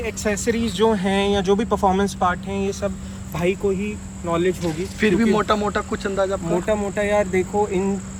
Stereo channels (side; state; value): both; identical; correlation 1.00